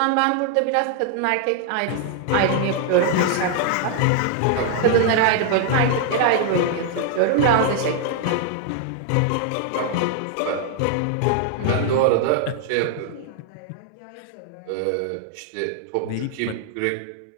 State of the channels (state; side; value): different; both; correlation 0.00